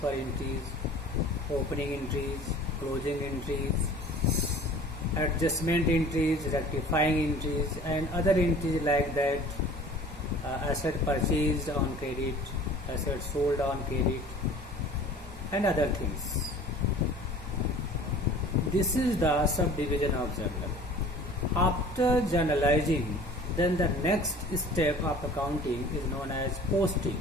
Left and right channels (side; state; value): both; normal; correlation 0.46